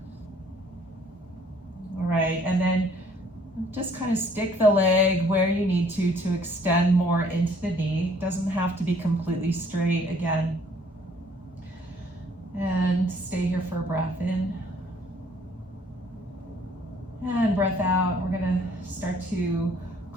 All right, and then just kind of stick the leg where you need to extend more into the knee. Doesn't have to be completely straight again. And stay here for a breath in. And breath out. We're going to start to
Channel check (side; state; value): both; normal; correlation 0.60